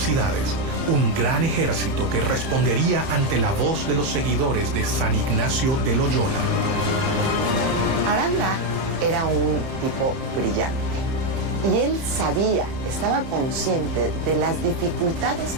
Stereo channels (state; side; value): late; left; 30 ms